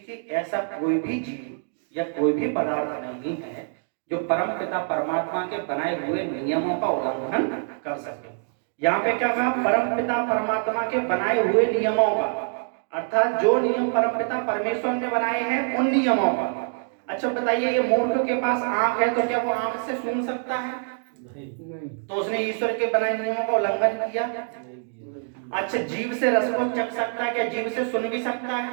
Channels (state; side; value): silent; left; digital silence